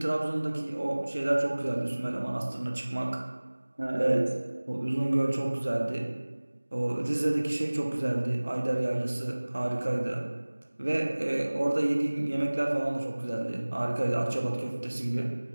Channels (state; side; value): inverted; both; correlation -1.00